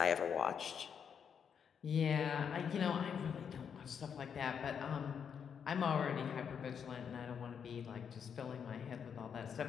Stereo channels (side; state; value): right; quieter; 7.3 dB